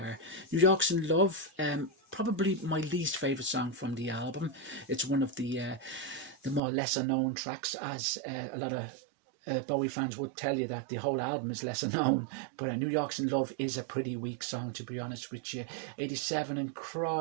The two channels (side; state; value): left; drops out; at 6.6 s